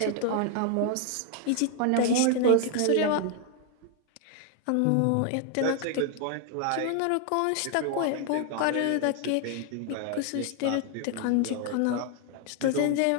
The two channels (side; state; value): both; different; correlation 0.00